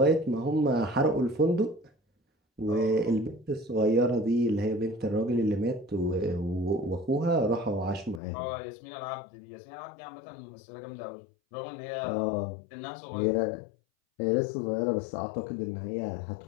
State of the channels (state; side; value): drops out; right; at 8.2 s